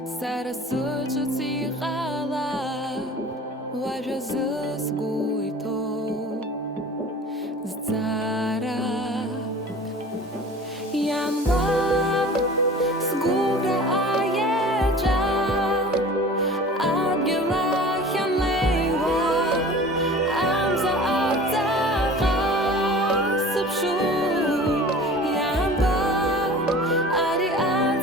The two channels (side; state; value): both; normal; correlation 0.41